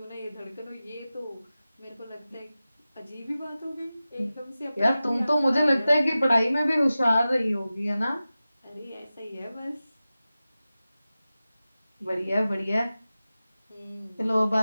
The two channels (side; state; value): both; inverted; correlation -0.95